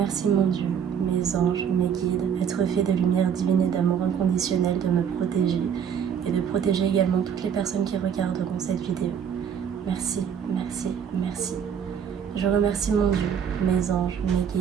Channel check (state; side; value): quieter; left; 7.9 dB